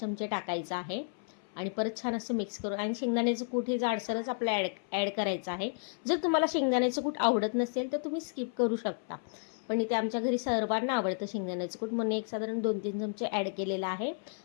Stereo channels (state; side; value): silent; right; 56 dB below the other